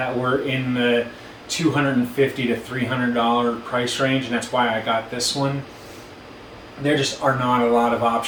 were in the $250 to $300 price range, and that's why I got this one. There just are not a lot of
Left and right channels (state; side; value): identical; both; correlation 1.00